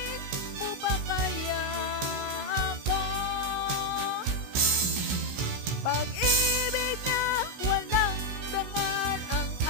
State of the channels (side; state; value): left; late; 16 ms